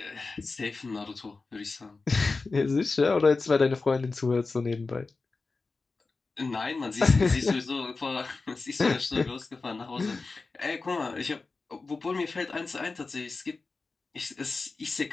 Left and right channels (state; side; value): quieter; right; 3.9 dB